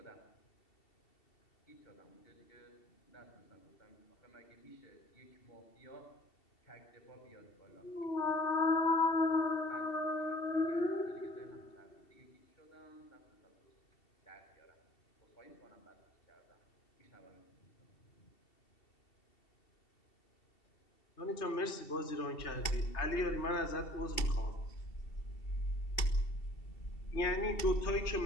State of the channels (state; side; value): late; right; 2.7 ms